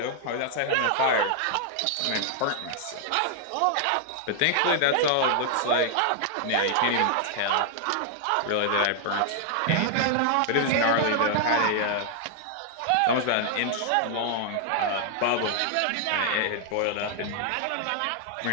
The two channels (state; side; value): different; both; correlation 0.00